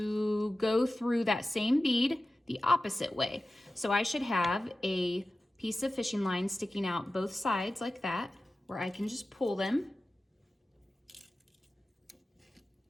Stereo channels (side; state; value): both; normal; correlation 0.95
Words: go through that same bead the opposite way. So I should have a piece of fishing line sticking out both sides like that, where I can just pull them.